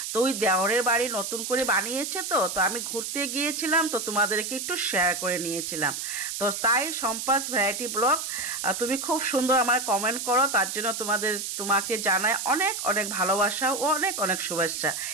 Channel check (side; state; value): right; noise; hiss, 5 dB below the sound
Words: তো ওই দেওরের বাড়ি নতুন করে বানিয়েছে, তো আমি ঘুরতে গিয়েছিলাম, তো তোমাদেরকে একটু শেয়ার করে নিয়েছিলাম। তো তাই সম্পাস ভ্যারাইটি ব্লগ তুমি খুব সুন্দর আমার কমেন্ট করো, তার জন্য তোমাকে জানাই অনেক অনেক ভালোবাসা ও অনেক অনেক শুভেচ্ছা।